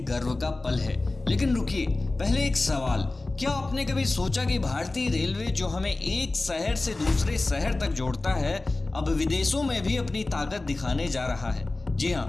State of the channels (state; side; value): quieter; right; 3.1 dB